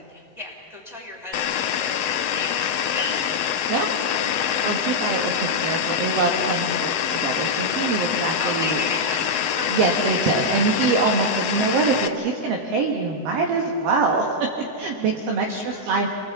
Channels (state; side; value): late; left; 7.7 ms